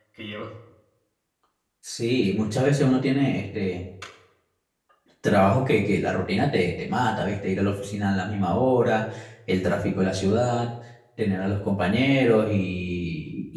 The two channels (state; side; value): identical; both; correlation 1.00